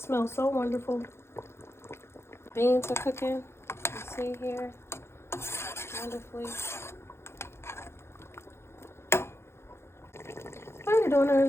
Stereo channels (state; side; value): late; right; 0.12 ms